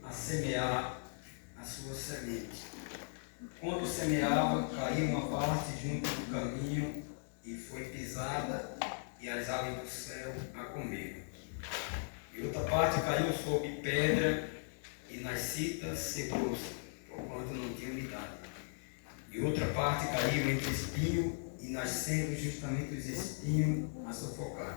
a semear a sua semente. Quando semeava, caiu uma parte junto do caminho e foi pisada, e as aves do céu a comeram. E outra parte caiu sobre pedra, e nas citas secou-se, porquanto não tinha umidade. E outra parte caiu entre espinho, e nascendo justamente os espinhos a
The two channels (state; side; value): silent; right; digital silence